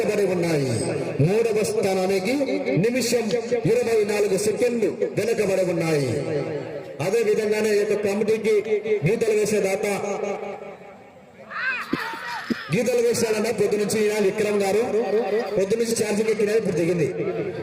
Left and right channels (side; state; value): both; identical; correlation 1.00